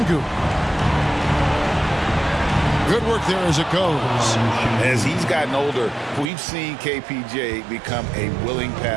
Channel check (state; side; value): drops out; left; at 6.3 s